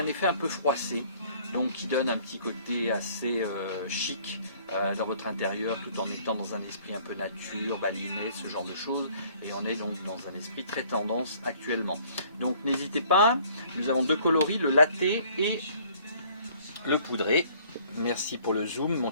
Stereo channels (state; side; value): inverted; both; correlation -0.58